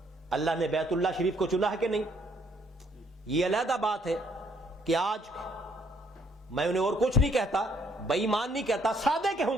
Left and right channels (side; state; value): both; normal; correlation 0.67